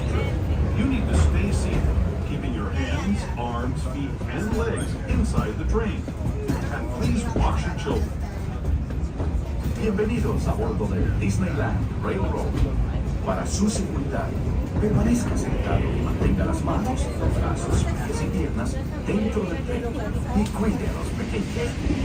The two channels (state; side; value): identical; both; correlation 1.00